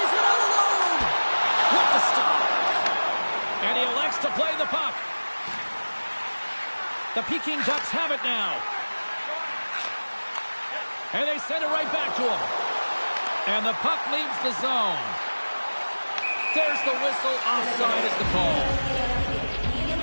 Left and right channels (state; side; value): inverted; both; correlation -1.00